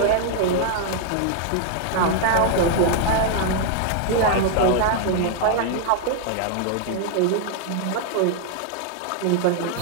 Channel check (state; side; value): different; both; correlation 0.00